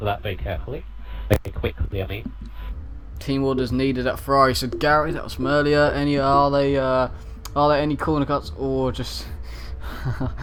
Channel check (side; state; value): both; identical; correlation 1.00